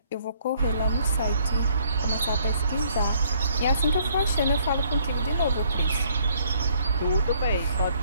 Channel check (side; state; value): both; inverted; correlation -0.64